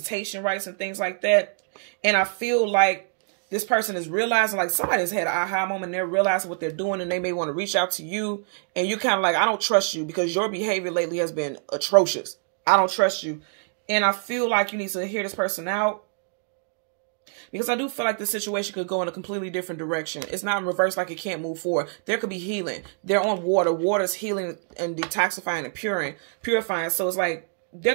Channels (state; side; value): silent; left; 60 dB below the other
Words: rights and things like that. And I feel like this person is realizing, like somebody's had an aha moment and they're realizing what they're doing and they may want to reach out to you. And you kind of like, I don't trust you because your behavior lately has been atrocious. I don't trust you. And I feel like you need to hear this person out. Because I do feel like the situation could go in a completely different direction. It's not in reverse like it can't move forward. There could be healing. They're on water. Water's healing and detoxifying and purifying. So it's like there